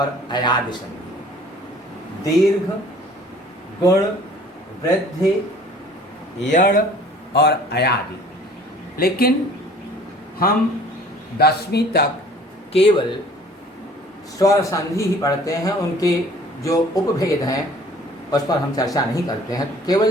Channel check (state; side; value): normal; both; correlation 0.51